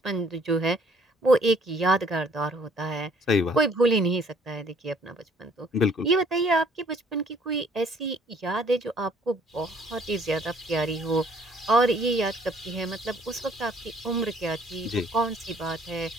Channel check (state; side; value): normal; both; correlation 0.59